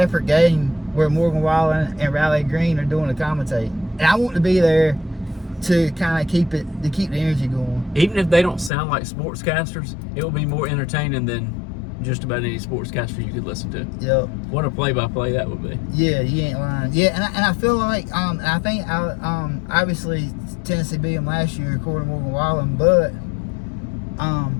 game where Morgan Wallen and Riley Green are doing the commentating. And I want to be there to kind of keep the energy going. Even if they don't sound like sportscasters, it will be more entertaining than just about any sportscaster you could listen to. Yep. What a play-by-play that would be. Yeah, you ain't lying. Yeah, and I feel like I think obviously Tennessee beat them last year according to Morgan Wallen, but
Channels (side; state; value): right; drops out; at 8.7 s